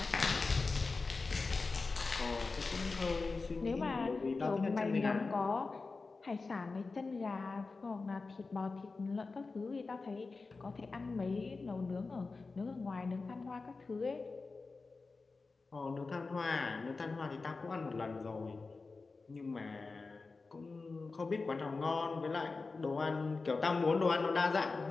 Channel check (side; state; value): right; quieter; 4.0 dB